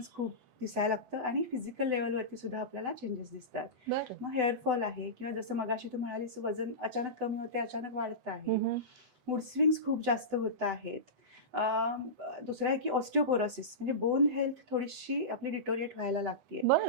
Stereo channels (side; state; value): left; late; 8.0 ms